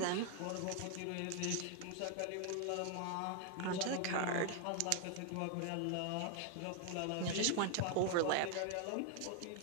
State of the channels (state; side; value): different; both; correlation 0.00